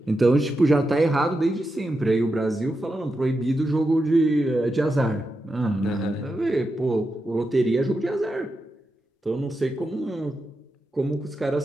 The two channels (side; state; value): both; normal; correlation 0.88